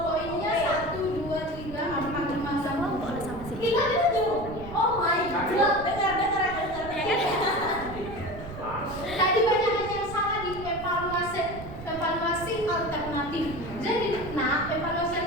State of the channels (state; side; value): noise; right; rumble, 12 dB below the sound